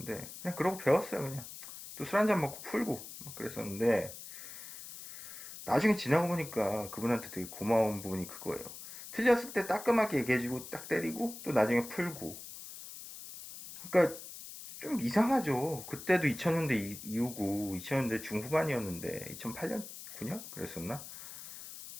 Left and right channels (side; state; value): left; noise; hiss, 12 dB below the sound